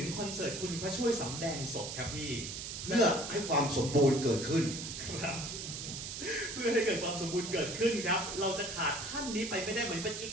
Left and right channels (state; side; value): noise; right; hiss, 6 dB below the sound